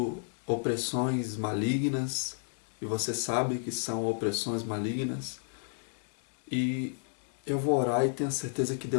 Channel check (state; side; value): silent; right; 57 dB below the other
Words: opressões malignas e você sabe que são opressões malignas. E eu vou orar e tenho certeza que